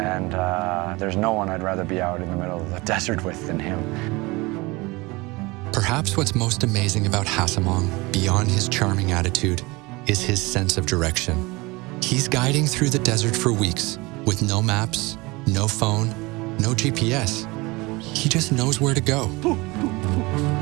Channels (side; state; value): left; quieter; 23.7 dB